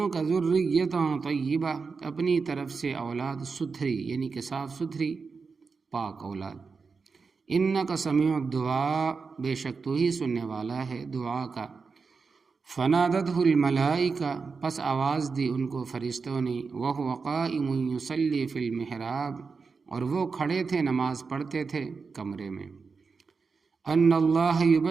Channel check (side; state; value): left; quieter; 4.9 dB